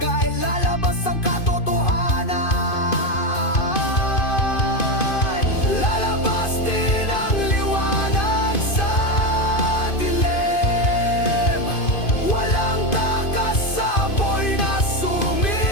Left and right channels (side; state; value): right; late; 2.5 ms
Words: lalabas ang katotohanan. Lalabas din ang liwanag sa dilim, walang takas sa apoy na sumisende.